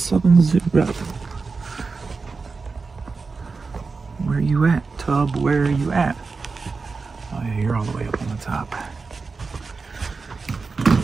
Where you at, Tub? Where are you at? Oh yeah, you're all the way up on the top.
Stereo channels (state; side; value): quieter; left; 4.4 dB